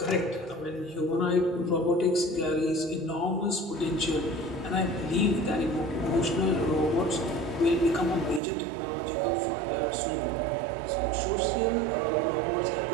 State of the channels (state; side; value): drops out; left; at 8.4 s